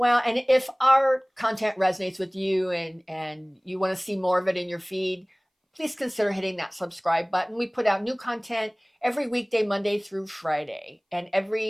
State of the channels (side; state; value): both; identical; correlation 1.00